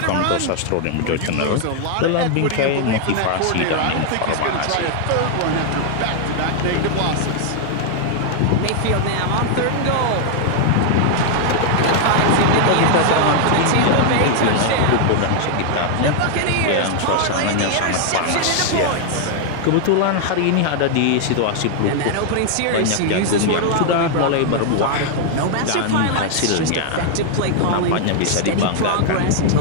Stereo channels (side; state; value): both; different; correlation 0.00